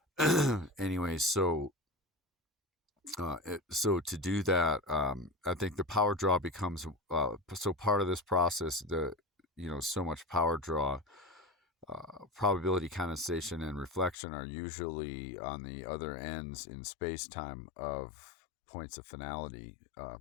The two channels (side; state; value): right; drops out; at 14.2 s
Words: anyways, so to do that, I think the power draw becomes so part of this process. So much power draw, probability, condensation, and reflection are usually on the other ends in space-time of points of finality.